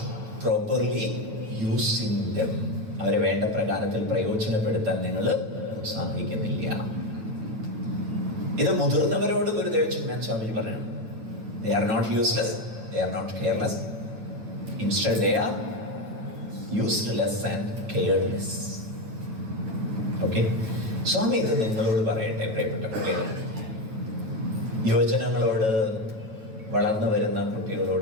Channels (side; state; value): left; late; 9.5 ms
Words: properly using them. അവരെ വേണ്ട പ്രകാരത്തിൽ പ്രയോജനപ്പെടുത്താൻ നിങ്ങൾ സാധിക്കുന്നില്ല. ഇത് മുതിർന്നവരോട് ഗുരുദേവ് ചിന്മയാനന്ദ സ്വാമിജി പറഞ്ഞു. They are not useless, they are not careless. Instead they are useless and careless. Okay? സ്വാമി ഇത് നിങ്ങളോട് പറയട്ടെ, പ്രിയപ്പെട്ട കുട്ടികൾ. യുവജനങ്ങളോട്, വളർന്നു വരുന്ന